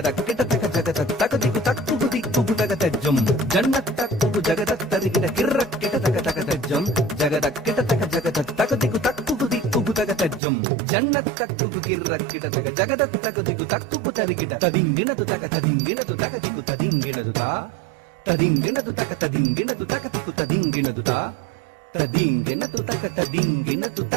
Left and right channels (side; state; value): left; drops out; at 10.4 s